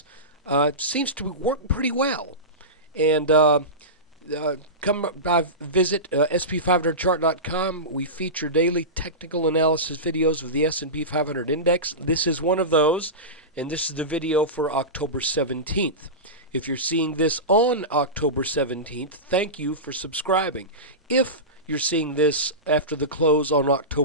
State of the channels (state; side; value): normal; both; correlation -0.18